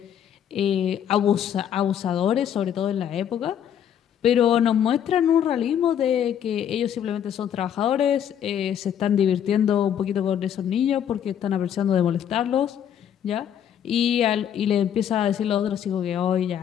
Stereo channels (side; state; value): right; quieter; 9.3 dB